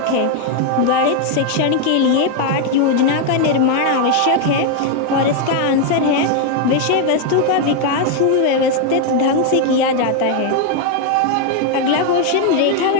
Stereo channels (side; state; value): both; different; correlation 0.01